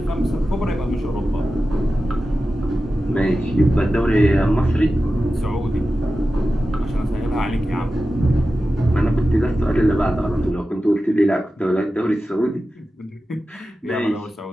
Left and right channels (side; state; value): both; normal; correlation 0.93